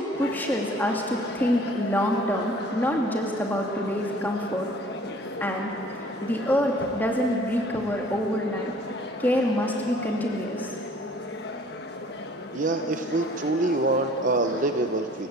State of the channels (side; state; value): both; normal; correlation 0.53